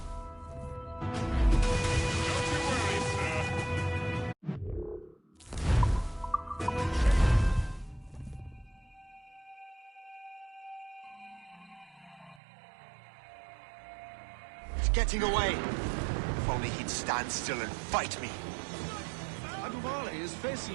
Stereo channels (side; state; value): left; drops out; at 12.4 s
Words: It's getting away. If only he'd stand still and fight me. Aduvale is